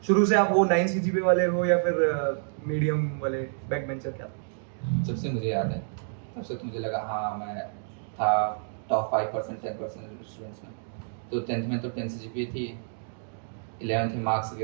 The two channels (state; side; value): silent; left; digital silence